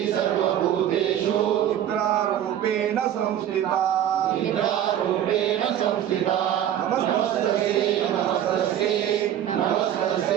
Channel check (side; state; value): left; quieter; 10.9 dB